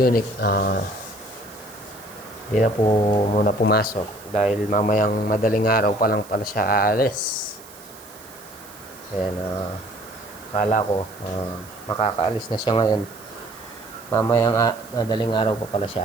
hindi na po muna pumasok dahil mamayang madaling araw pa lang pala siya aalis. Ayan, akala ko makakaalis na siya ngayon. Mamayang madaling araw pa pala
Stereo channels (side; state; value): right; noise; hiss, 20 dB below the sound